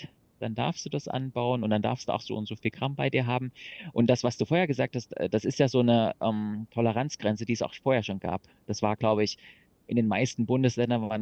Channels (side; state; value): both; identical; correlation 1.00